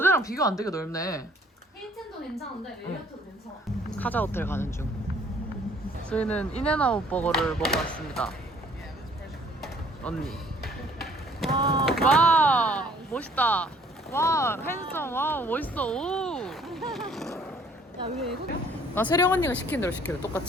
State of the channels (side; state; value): both; normal; correlation 0.58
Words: 비교 안 되게 넓네. 힐튼도 괜찮은데 메리어트도 괜찮아. 카자 호텔 가는 중. 저희는 인앤아웃 버거를 먹어 왔습니다. 언니. 와 멋있다. 와 핸섬. 와 멋있어. 오. 야, 왜 외국이야? 나 세령 언니가 시킨 대로 시켜요.